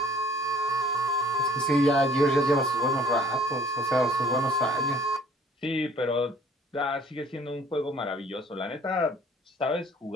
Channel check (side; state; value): both; normal; correlation 0.55